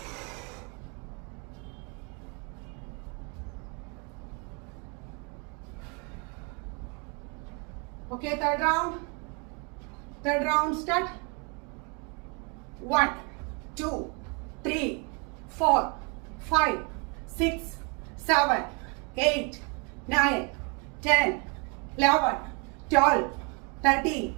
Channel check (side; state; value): left; quieter; 33.6 dB